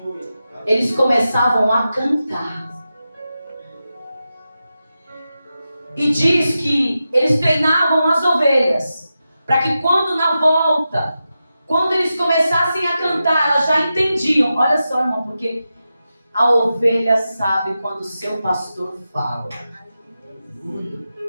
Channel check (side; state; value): both; inverted; correlation -0.91